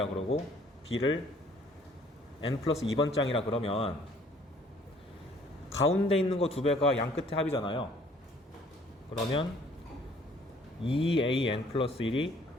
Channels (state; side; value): normal; both; correlation 0.58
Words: 그러고, b를 n 플러스 2번째 항이라 그러면 가운데 있는 거 2배가 양끝의 합이잖아요. 그러면 2an 플러스 1이